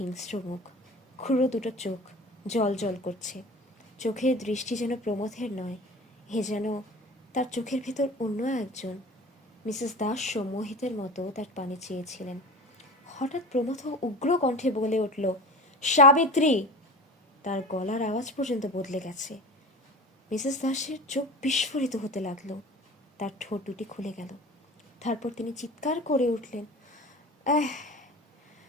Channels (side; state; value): both; normal; correlation 0.34